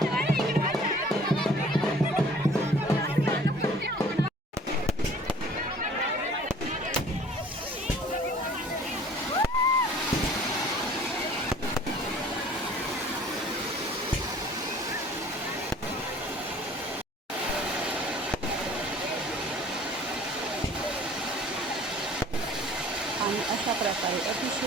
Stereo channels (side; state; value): both; normal; correlation 0.50